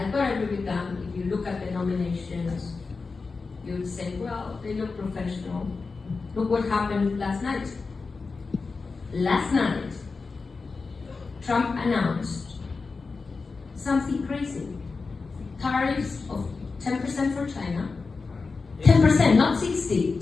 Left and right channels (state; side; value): quieter; right; 4.3 dB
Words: thought I agree with them, if you look at the nominations, you would say, well, they look professional. Look what happened last night. Last night, Trump announced something crazy. Tariffs of 10% for China, 10%, not 60,